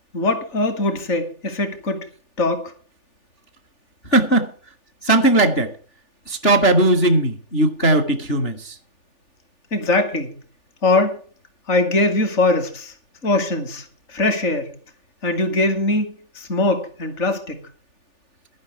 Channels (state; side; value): late; right; 3.4 ms